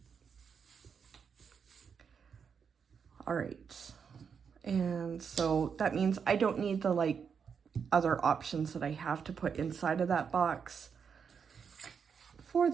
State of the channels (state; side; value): quieter; left; 6.5 dB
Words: All right, and so that means I don't need the like other options that I have to put inside of that box for